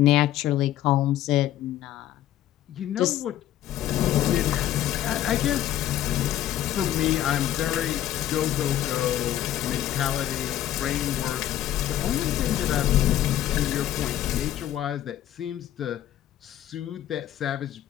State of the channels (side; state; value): right; quieter; 12.4 dB